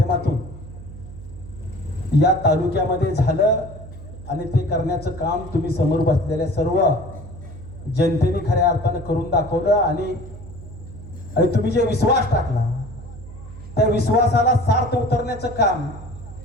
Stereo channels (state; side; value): noise; right; hum, 15 dB below the sound